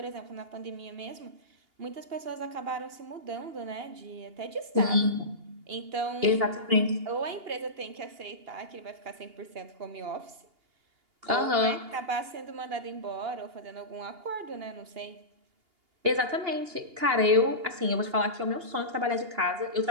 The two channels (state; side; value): late; left; 2.8 ms